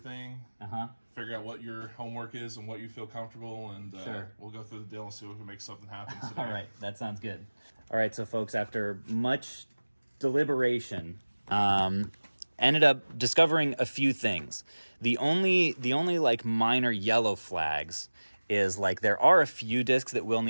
figure out what your homework is and what you feel comfortable, and we'll go through the deal and see if we can make something happen today. All right, that sounds good. All right, so folks, after much deliberation, ended up discovering a few things. The only like minor yellow flags is like there are a few discs that will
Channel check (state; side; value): inverted; both; correlation -1.00